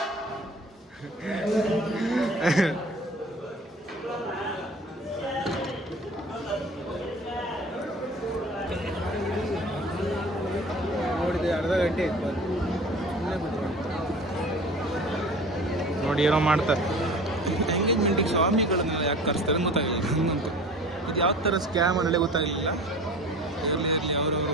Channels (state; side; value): normal; both; correlation 0.41